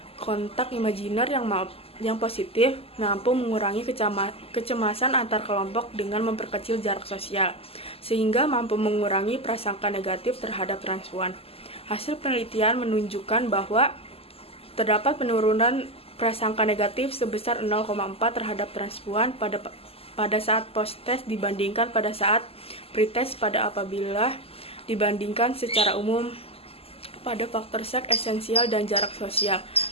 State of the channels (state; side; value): late; right; 0.28 ms